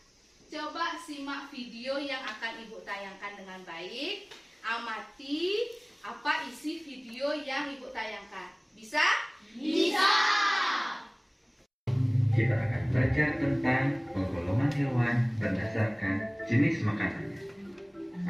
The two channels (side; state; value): both; identical; correlation 1.00